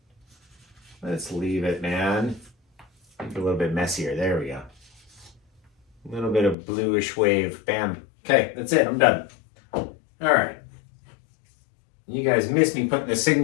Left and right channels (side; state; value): right; drops out; at 6.6 s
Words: Let's leave it, man. Make it a little bit messier. There we go. A little bit of bluish wave. Bam. Okay, that's it. I'm done. All right. You guys missed me putting the